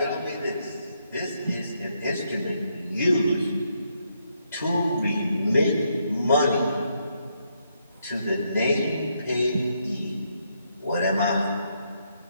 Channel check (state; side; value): inverted; both; correlation -0.77